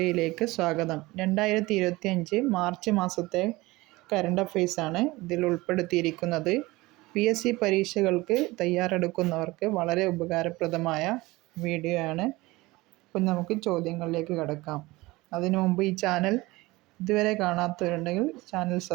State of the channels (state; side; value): quieter; left; 20.9 dB